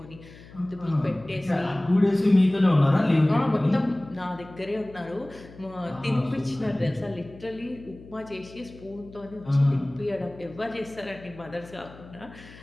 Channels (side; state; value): left; noise; hum, 20 dB below the sound